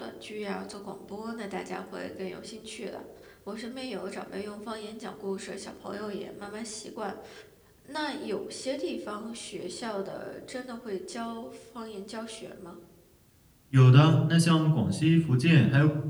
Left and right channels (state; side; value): identical; both; correlation 1.00